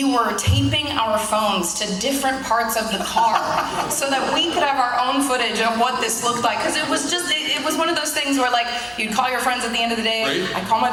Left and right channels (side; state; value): both; identical; correlation 1.00